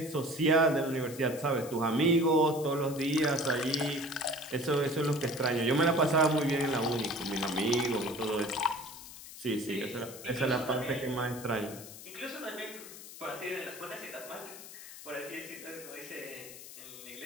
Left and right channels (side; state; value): left; noise; hiss, 14 dB below the sound